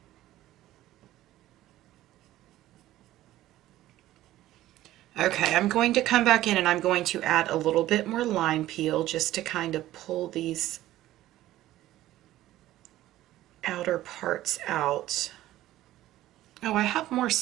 Okay, I'm going to come back in and I'm going to add a little bit more lime peel just to kind of pull these outer parts out. Oh, I have more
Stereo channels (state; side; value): quieter; left; 14.8 dB